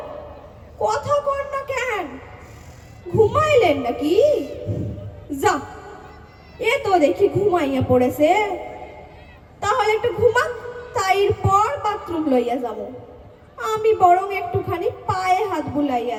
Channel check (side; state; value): both; identical; correlation 1.00